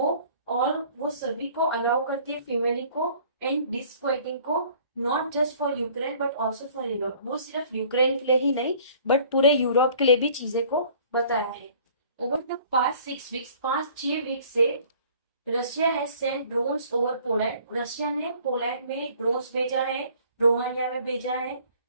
और वो सभी को अलाउ करती है फीमेल को एंड डिस्क्वाइटिंग को, not just for Ukraine but also for Europe, वो सिर्फ यूक्रेन के लिए ही नहीं बट पूरे यूरोप के लिए भी चीजें को बताया है। Over the past 6 weeks, 5-6 week से Russia has sent drones over Poland, Russia ने पोलैंड में ड्रोन्स भेजा है, रोमानिया में भेजा है,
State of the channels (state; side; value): inverted; both; correlation -0.54